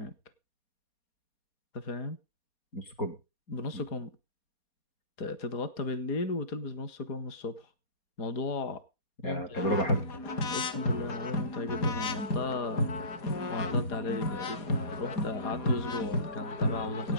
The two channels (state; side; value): late; right; 4.2 ms